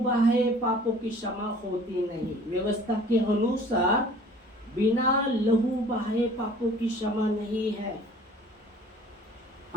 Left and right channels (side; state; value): both; normal; correlation 0.49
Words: पापों की क्षमा होती नहीं। व्यवस्था के अनुसार बिना लहू बहाए पापों की क्षमा नहीं है।